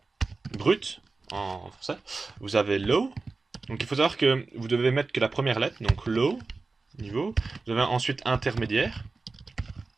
brut en français. Vous avez low. Donc il faut savoir que vous devez mettre que la première lettre, donc low, niveau. Vous avez ensuite intermédiaire,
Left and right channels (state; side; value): quieter; left; 3.8 dB